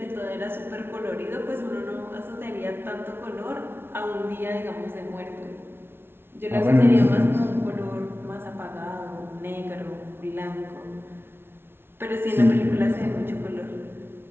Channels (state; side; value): late; left; 0.11 ms